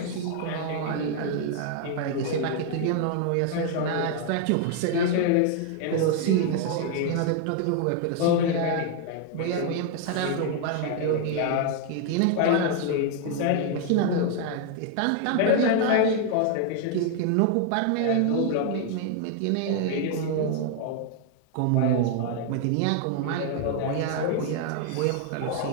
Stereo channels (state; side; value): different; both; correlation 0.00